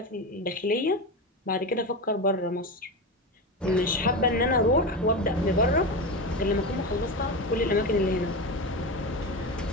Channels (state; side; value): normal; both; correlation 0.20